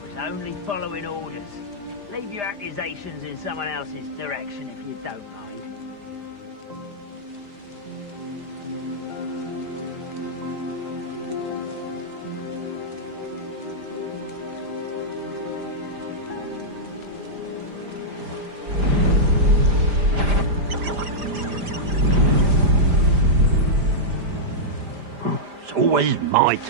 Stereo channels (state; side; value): late; left; 5.0 ms